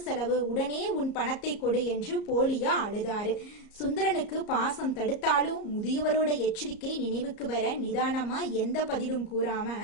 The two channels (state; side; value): late; right; 34 ms